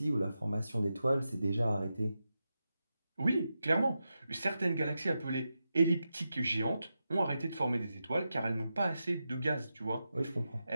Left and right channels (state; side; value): inverted; both; correlation -0.89